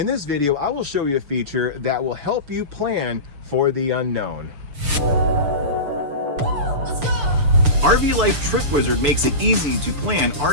this video, I will show you a feature that will help you plan for the unknown. RV Life Trip Wizard makes it easy to plan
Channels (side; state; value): left; late; 6.8 ms